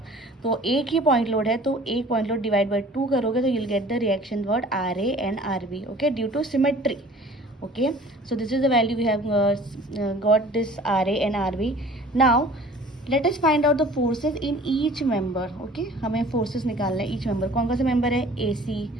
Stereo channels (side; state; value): both; normal; correlation 0.48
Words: तो एक ही point load है, तो एक पॉइंट लोड डिवाइड बाई 2 करोगे तो you'll get the reaction what RA and RB. Okay, due to symmetry. Okay, so this is the value we have got this RA and RB. Now late us find out the forces in each member. Okay, हमें forces निकालना है each member. कौन कौन से member है? ए सी,